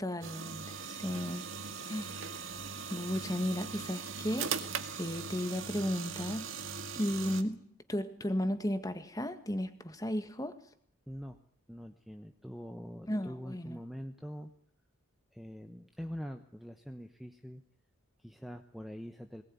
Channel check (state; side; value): normal; both; correlation 0.77